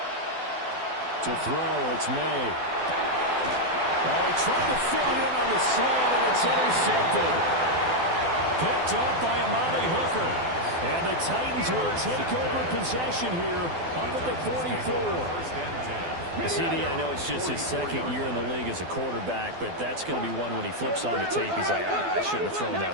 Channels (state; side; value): late; left; 12 ms